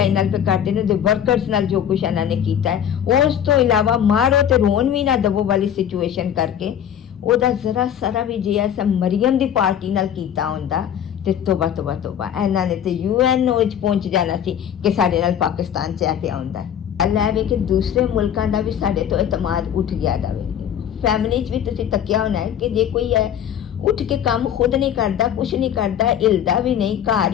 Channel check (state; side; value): quieter; right; 9.5 dB